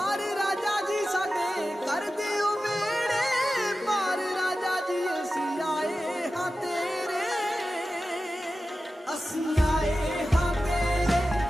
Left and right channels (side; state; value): both; normal; correlation 0.93